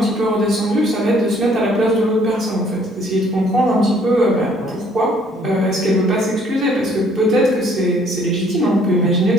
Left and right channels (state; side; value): normal; both; correlation 0.61